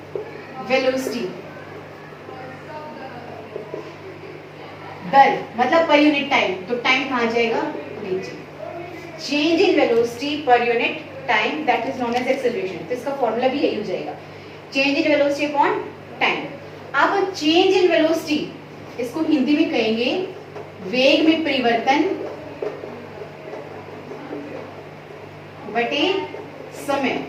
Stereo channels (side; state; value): both; identical; correlation 1.00